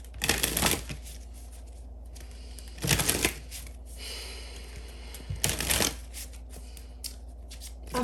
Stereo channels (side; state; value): both; identical; correlation 1.00